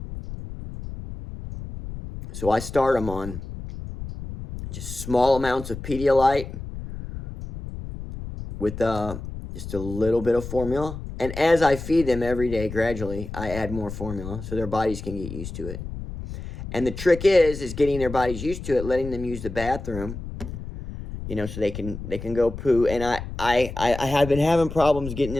So I start them on just small amounts of Pedialyte with just a little bit of formula. And as I feed them every day, gradually, I add more formula so their bodies can get used to it. And the trick is getting their bodies used to it, letting them use the bathroom, you know, so they can go poo. And I have been having problems getting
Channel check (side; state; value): left; noise; rumble, 9 dB below the sound